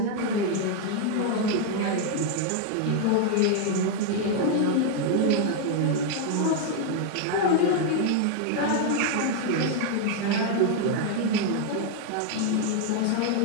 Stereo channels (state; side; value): different; both; correlation 0.00